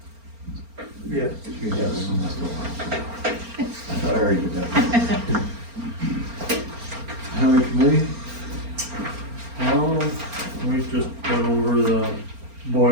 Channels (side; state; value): left; late; 4.4 ms